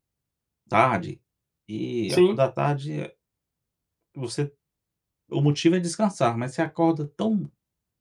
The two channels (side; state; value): both; identical; correlation 1.00